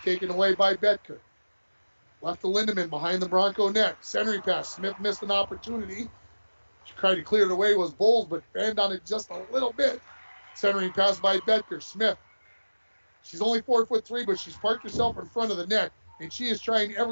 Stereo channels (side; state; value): both; inverted; correlation -1.00